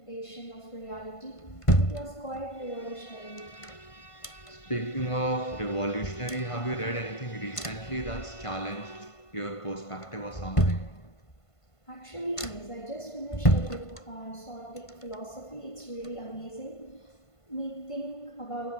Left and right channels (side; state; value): right; late; 1.5 ms